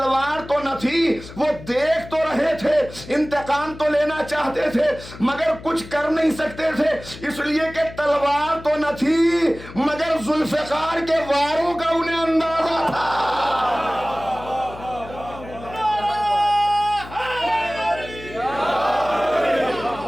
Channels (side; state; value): left; noise; hum, 15 dB below the sound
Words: تو نہ تھی, وہ دیکھ تو رہے تھے, انتقام تو لینا چاہتے تھے, مگر کچھ کر نہیں سکتے تھے, اس لیے کہ تلوار تو نہ تھی, مگر ذوالفقار کے واروں کا انہیں اندازہ تھا.